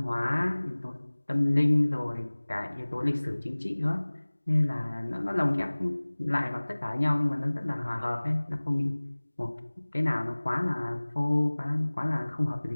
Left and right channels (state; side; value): inverted; both; correlation -1.00